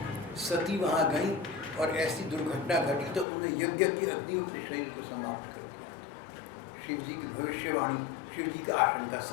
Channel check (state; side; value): drops out; right; at 3.2 s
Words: सती वहाँ गई और ऐसी दुर्घटना घटी तो उन्हें यज्ञ की अग्नि अपने शरीर को समाप्त कर दिया। शिव जी की भविष्यवाणी, शिव जी का आशंका